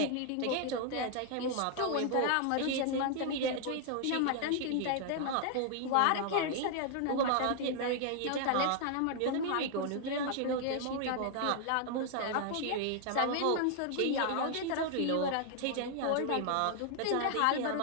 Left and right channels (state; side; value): different; both; correlation 0.00